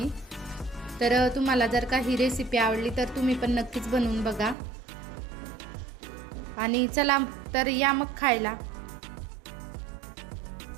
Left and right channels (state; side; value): drops out; left; at 4.5 s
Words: तर तुम्हाला जर का ही रेसिपी आवडली तर तुम्ही पण नक्कीच बनवून बघा. आणि चला तर या मग खायला.